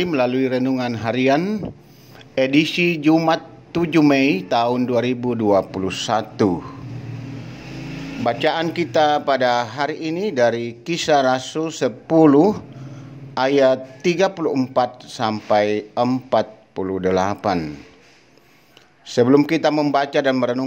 melalui renungan harian edisi Jumat 7 Mei tahun 2021. Bacaan kita pada hari ini dari Kisah Rasul 10 ayat 34 sampai 48. Sebelum kita membaca dan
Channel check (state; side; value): identical; both; correlation 1.00